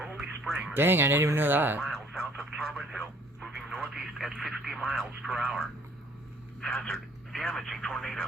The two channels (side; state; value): both; normal; correlation 0.59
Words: Springs. Dang, I didn't even know that. Miles south of Carbon Hill, moving northeast at 50 miles per hour. Hazard, damaging